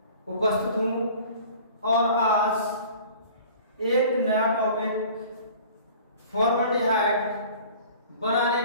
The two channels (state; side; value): inverted; both; correlation -0.46